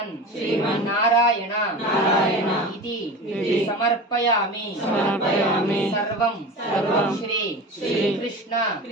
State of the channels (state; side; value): normal; both; correlation 0.31